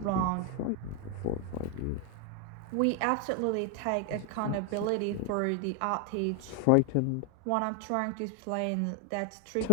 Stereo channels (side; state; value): both; different; correlation 0.00